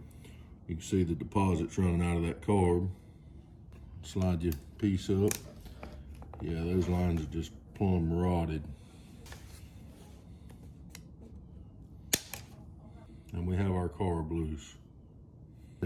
You can see the deposits running out of that carb. Slide your piece up. Yeah, those lines are just plumb rotted. And we have our carb loose.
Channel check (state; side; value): identical; both; correlation 1.00